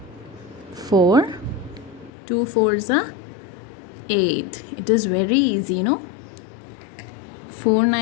4, 2 4 ज़ा 8. It is very easy, no? 4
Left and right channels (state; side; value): drops out; right; at 2.1 s